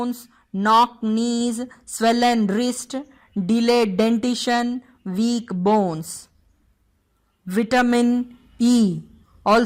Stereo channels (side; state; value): both; identical; correlation 1.00